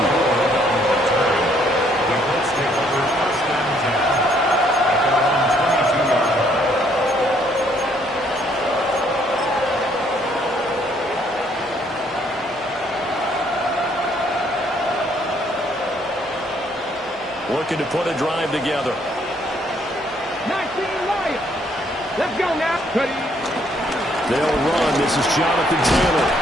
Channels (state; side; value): noise; right; hum, 29 dB below the sound